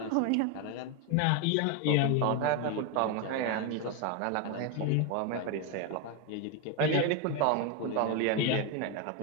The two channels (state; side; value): different; both; correlation 0.02